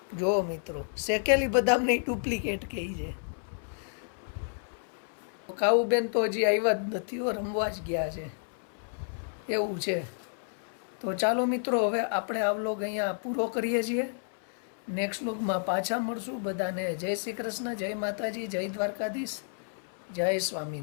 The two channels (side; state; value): right; silent; 57 dB below the other